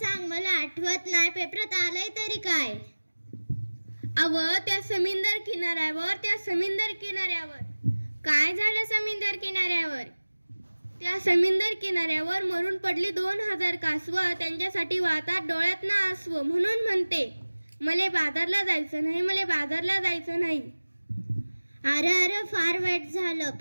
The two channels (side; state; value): both; inverted; correlation -1.00